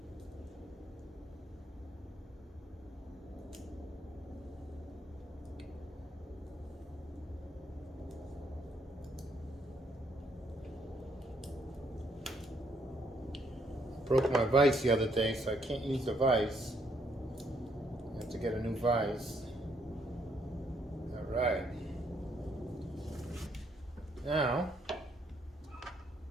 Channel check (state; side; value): normal; both; correlation 0.72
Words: Broke my vise the other day, so I can't use the vise. I have to get a new vise. Alright. Now,